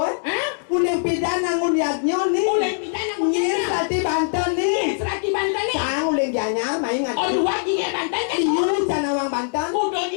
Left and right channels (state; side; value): silent; right; digital silence